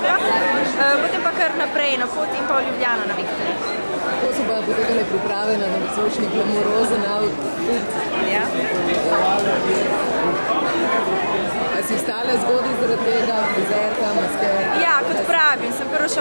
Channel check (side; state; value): both; inverted; correlation -1.00